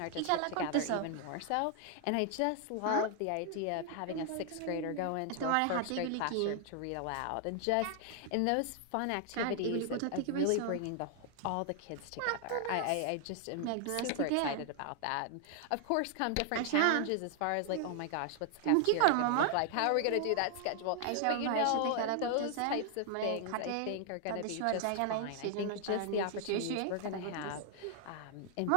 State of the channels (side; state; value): both; different; correlation 0.00